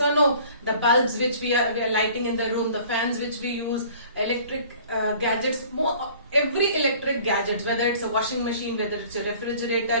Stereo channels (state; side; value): inverted; both; correlation -0.50